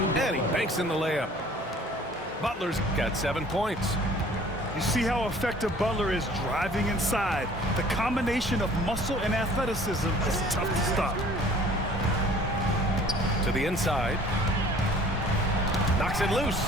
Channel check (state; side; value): normal; both; correlation 0.51